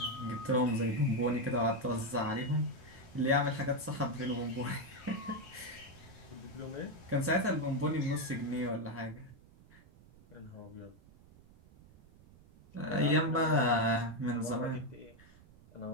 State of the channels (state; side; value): noise; right; rumble, 24 dB below the sound